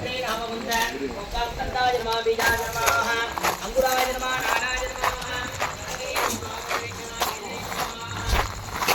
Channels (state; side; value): identical; both; correlation 1.00